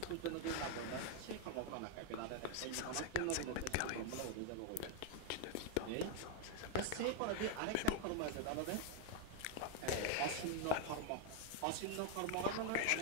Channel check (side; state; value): both; different; correlation 0.01